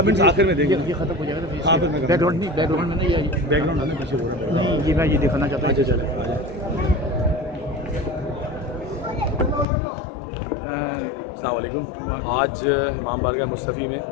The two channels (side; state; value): right; drops out; at 9.7 s